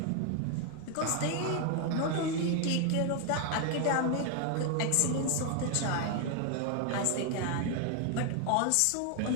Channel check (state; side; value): different; both; correlation 0.01